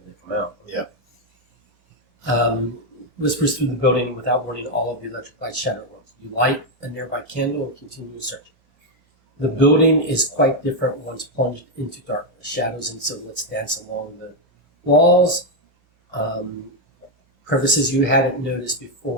they come out. Yeah. Whispers through the building, and without warning, all of the electric lights shatter at once. You light a nearby candle and continue searching. The building is quite different once plunged into darkness. Shadows and silhouettes dance along the walls. Crevices you hadn't noticed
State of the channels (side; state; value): both; normal; correlation 0.02